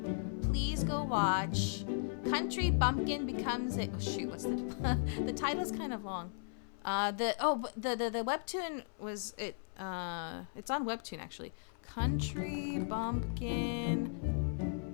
please go watch Country Bumpkin Becomes a... Oh shoot, what's the title's kind of long. The webtoon was it. It's on webtoon actually. Country Bumpkin.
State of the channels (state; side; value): silent; right; 53 dB below the other